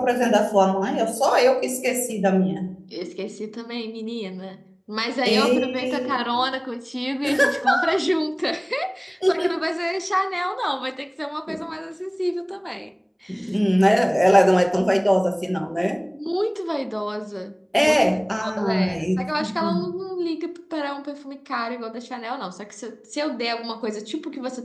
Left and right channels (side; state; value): both; identical; correlation 1.00